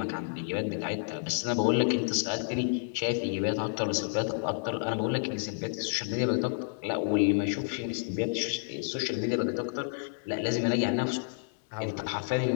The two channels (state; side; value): silent; right; 58 dB below the other